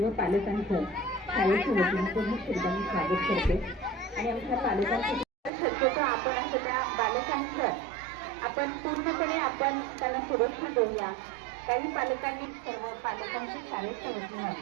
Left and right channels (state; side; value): drops out; left; at 5.5 s